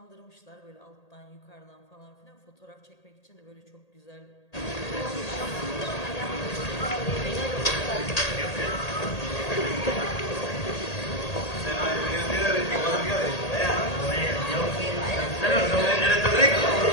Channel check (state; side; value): late; right; 1.8 ms